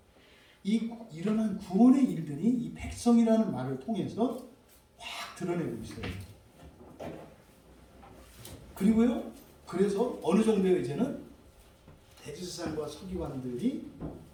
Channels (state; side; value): identical; both; correlation 1.00